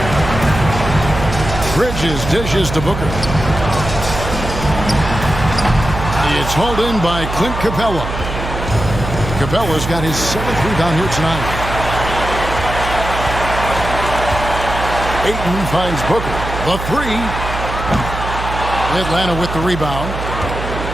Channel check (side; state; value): right; noise; hum, 6 dB below the sound